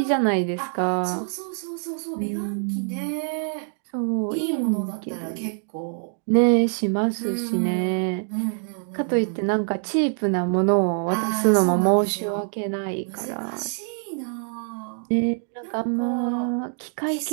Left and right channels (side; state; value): left; silent; 62 dB below the other